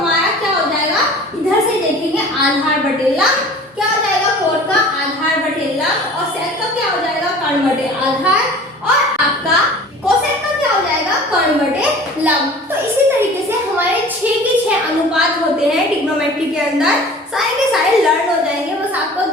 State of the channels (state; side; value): normal; both; correlation 0.43